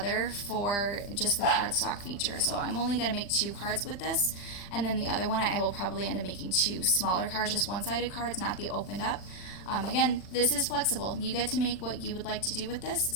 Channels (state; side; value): late; right; 40 ms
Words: for just the cardstock feature. So I'm only gonna make 2 cards with this, and then the other one I will probably end up making 2 smaller cards, just one-sided cards, not the opened up. Again, this is flexible. You get to make what you would like to do with this.